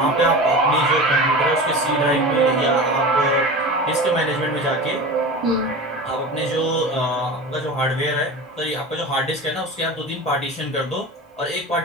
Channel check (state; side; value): normal; both; correlation 0.31